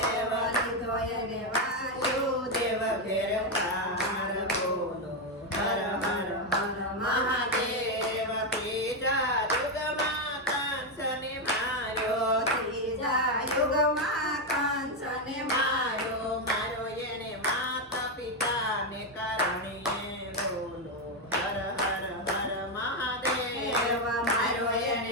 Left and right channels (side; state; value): both; normal; correlation 0.05